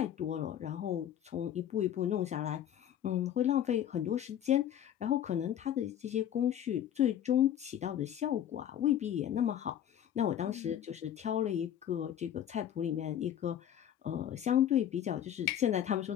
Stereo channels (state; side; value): quieter; right; 10.4 dB